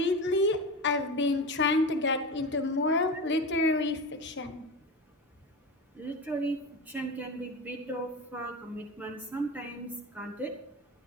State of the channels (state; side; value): normal; both; correlation 0.26